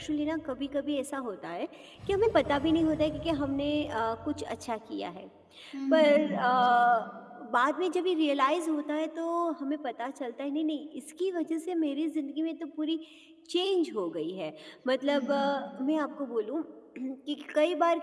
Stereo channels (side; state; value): both; identical; correlation 1.00